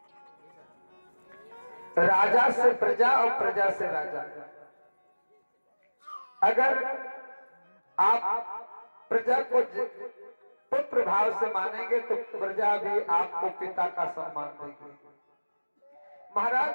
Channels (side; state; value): both; inverted; correlation -1.00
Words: राजा से प्रजा और प्रजा से राजा। अगर आप प्रजा को पुत्र भाव से मानेंगे तो प्रजा भी आपको पिता का सम्मान देगी।